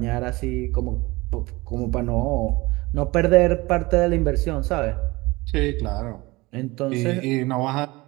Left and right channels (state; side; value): quieter; left; 22.1 dB